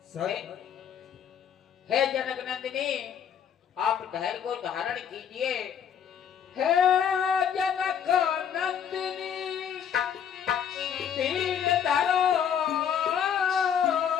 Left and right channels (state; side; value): quieter; right; 8.3 dB